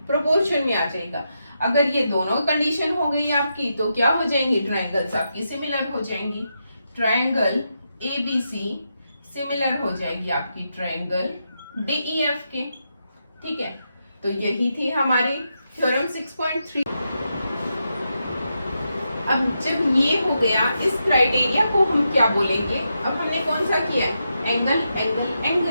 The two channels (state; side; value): inverted; both; correlation -0.85